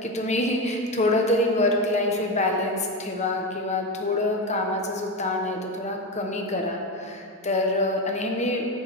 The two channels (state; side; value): normal; both; correlation 0.16